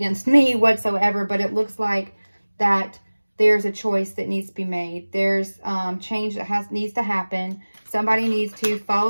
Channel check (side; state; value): both; inverted; correlation -1.00